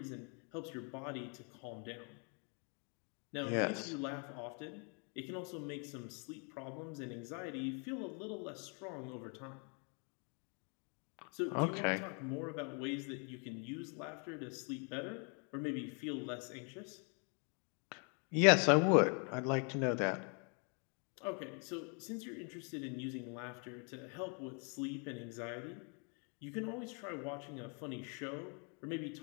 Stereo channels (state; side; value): quieter; right; 37.4 dB